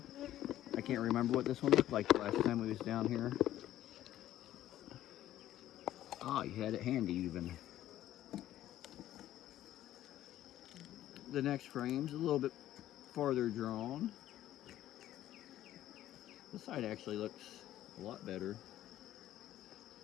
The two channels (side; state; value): right; quieter; 13.1 dB